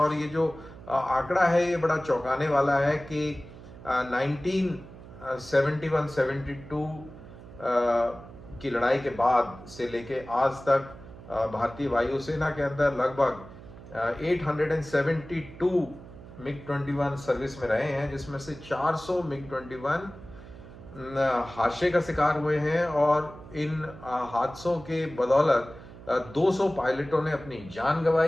ये जो आंकड़ा है ये बड़ा चौंकाने वाला है कि 1971-72 की लड़ाई के बाद से लेके आज तक भारतीय वायुसेना के अंदर लगभग 872 MiG-21 सर्विस में रहे हैं, जिसमें से 400 MiG-21 हादसे का शिकार हुए हैं। और इन हादसों के बदौलत 200 पायलटों ने अपनी जान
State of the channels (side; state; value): right; noise; hum, 17 dB below the sound